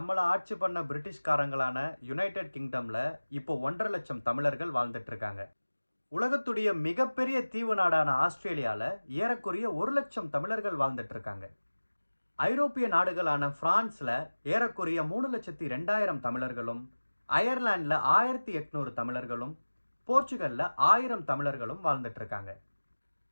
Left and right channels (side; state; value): both; inverted; correlation -1.00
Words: ஆட்சி பண்ண பிரிட்டிஷ்காரங்களான யுனைடெட் கிங்டமில் இப்போ 1.5 லட்சம் தமிழர்கள் வாழ்ந்துட்டு இருக்காங்க. உலகத்துடைய மிகப்பெரிய தீவு நாடான ஆஸ்திரேலியாவில் ஏறக்குறைய 1 லட்சம் தமிழர்கள் வாழ்ந்துட்டு இருக்காங்க. ஐரோப்பிய நாடுகளான பிரான்ஸில் ஏறக்குறைய 3,02,000 தமிழர்களும், அயர்லாண்டில் 1,800 தமிழர்களும், போர்ச்சுகலில் 1000 தமிழர்களும் வாழ்ந்துட்டு இருக்காங்க.